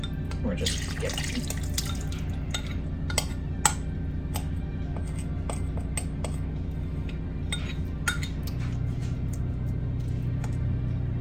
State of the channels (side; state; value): both; identical; correlation 1.00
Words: We're just skipping.